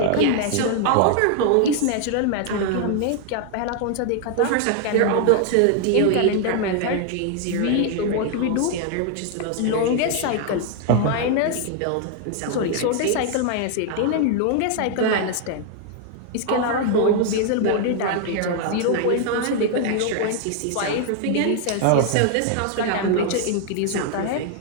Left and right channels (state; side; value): different; both; correlation 0.00